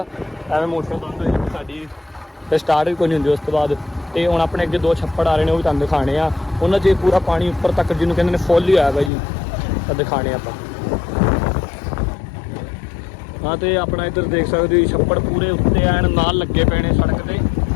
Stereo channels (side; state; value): right; drops out; at 9.1 s